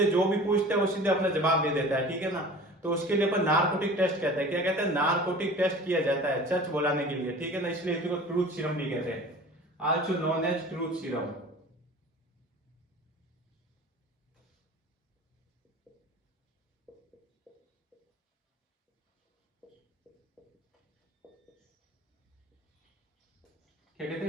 जो भी पूछते हैं वो सीधे अपना जवाब दे देता है, ठीक है ना। तो उसके लिए अपन नार्कोटिक टेस्ट कहते हैं। क्या कहते हैं, नार्कोटिक टेस्ट किया जाता है सच बोलाने के लिए, ठीक है ना। इसलिए इसको ट्रूथ सीरम भी कहते हैं, also known as truth serum. क्या कहते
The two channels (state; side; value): normal; both; correlation 0.41